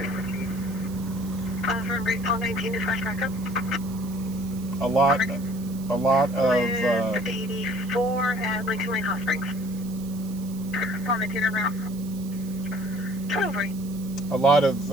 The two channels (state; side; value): noise; right; hiss, 19 dB below the sound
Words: 15? For Great Paul 19, dispatch backup. A lot of With 84 at Lincoln Lane Hot Springs. Paul 19 around. 12. a lot of